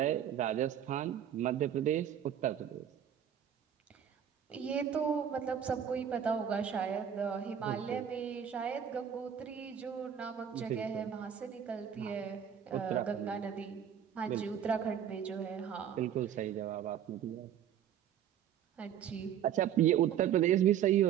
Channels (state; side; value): quieter; left; 9.2 dB